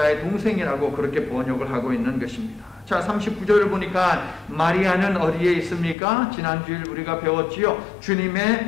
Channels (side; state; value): right; drops out; at 6.0 s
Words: 동생이라고 그렇게 번역을 하고 있는 것입니다. 자, 39절을 보니까 마리아는 어디에 있습니까? 지난주일 우리가 배웠지요.